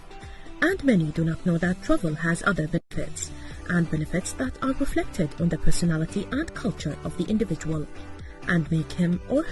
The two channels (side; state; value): both; identical; correlation 1.00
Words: And many do not know that travel has other benefits, and benefits that are reflected on the personality and culture of the individual, and make him or